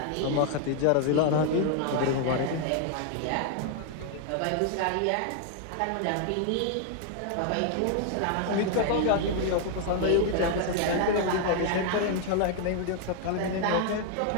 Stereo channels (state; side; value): different; both; correlation 0.00